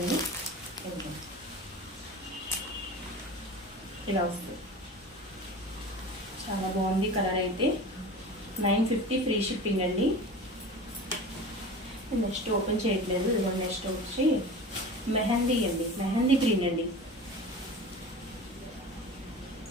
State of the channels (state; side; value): normal; both; correlation 0.35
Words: ఇలా వస్తుంది, చాలా బాగుంది కలర్ అయితే. 950 ఫ్రీ షిప్పింగ్ అండి. నెక్స్ట్ ఓపెన్ చేయట్లేదు. ఇదిగోండి, నెక్స్ట్ వచ్చి మెహందీ అండి, మెహందీ గ్రీన్ అండి.